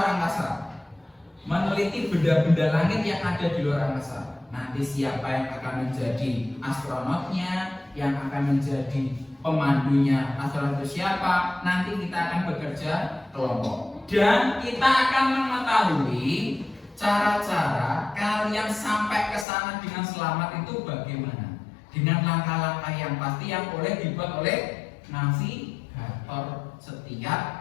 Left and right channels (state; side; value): drops out; right; at 19.5 s